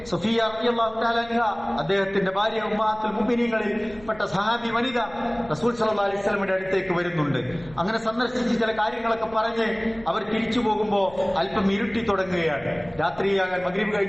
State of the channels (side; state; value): left; noise; rumble, 22 dB below the sound